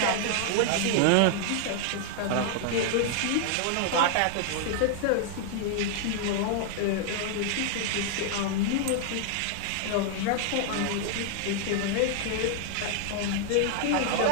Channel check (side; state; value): both; different; correlation 0.00